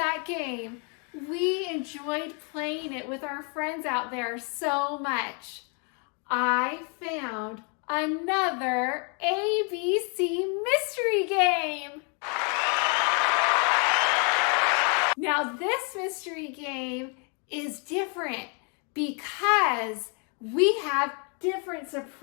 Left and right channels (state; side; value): quieter; right; 37.4 dB